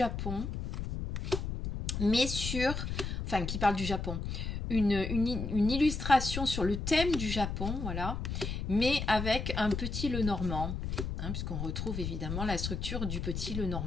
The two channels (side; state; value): left; noise; rumble, 4 dB below the sound